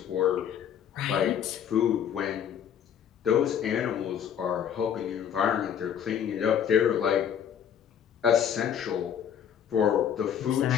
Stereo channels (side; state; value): right; quieter; 8.8 dB